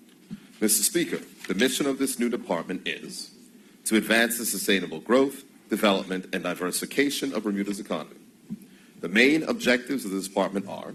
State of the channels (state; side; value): identical; both; correlation 1.00